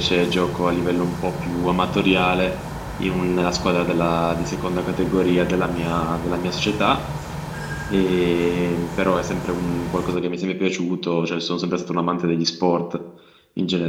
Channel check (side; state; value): both; identical; correlation 1.00